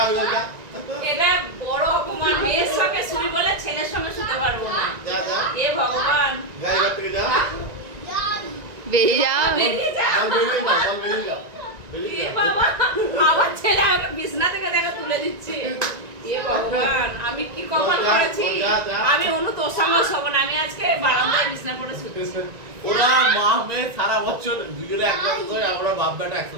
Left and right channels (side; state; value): left; late; 1.9 ms